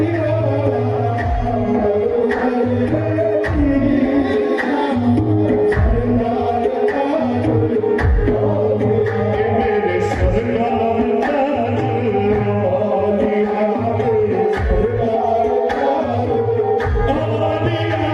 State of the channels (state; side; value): identical; both; correlation 1.00